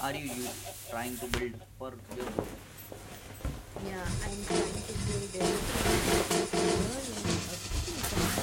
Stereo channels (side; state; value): both; identical; correlation 1.00